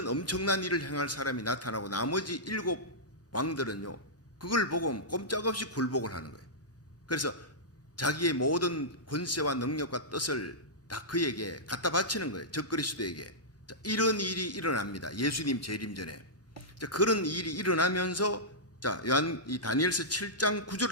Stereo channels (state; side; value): normal; both; correlation -0.13